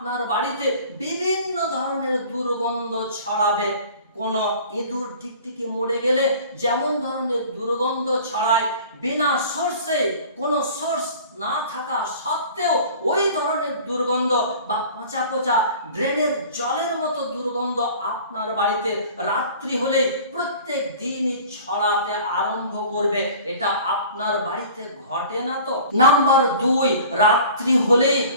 বাড়িতে বিভিন্ন ধরনের দুর্গন্ধ ছড়াবে। কোন ইঁদুর টিকটিকি মরে গেলে যেমন ধরনের দুর্গন্ধ ছড়ায়, বিনা সোর্সে কোনো সোর্স না থাকা সত্ত্বেও ওই ধরনের দুর্গন্ধ বা পচা পচা ড্রেনের জলের মতো দুর্গন্ধ আপনার বাড়িতে রাত্রি হলেই প্রত্যেক দিনই ছড়াতে আরম্ভ করবে। এটা আপনার বাড়িতে ঘটে না তো? নাম্বার 2, রাত্রি হলেই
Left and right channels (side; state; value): both; inverted; correlation -0.45